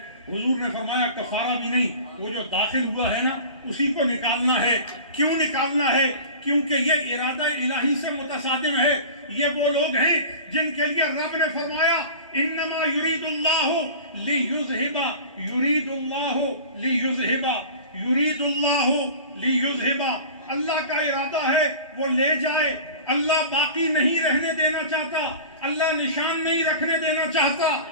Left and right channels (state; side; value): inverted; both; correlation -0.37